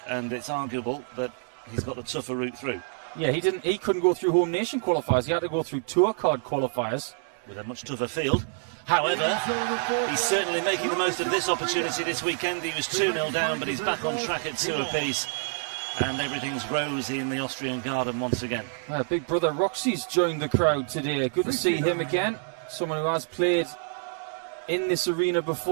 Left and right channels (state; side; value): silent; left; digital silence